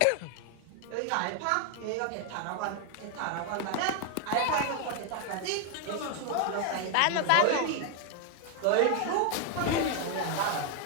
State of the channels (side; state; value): both; different; correlation 0.01